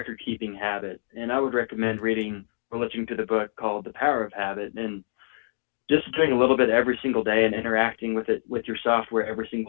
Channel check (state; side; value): silent; right; digital silence